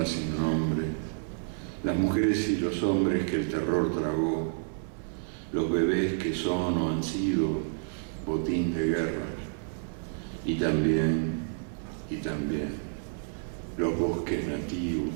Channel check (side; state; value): left; silent; digital silence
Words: sin nombre, las mujeres y los hombres que el terror tragó, los bebés que son o han sido botín de guerra, y también los bosques